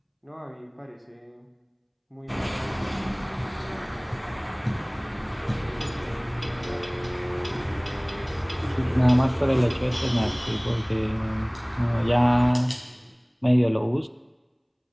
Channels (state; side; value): identical; both; correlation 1.00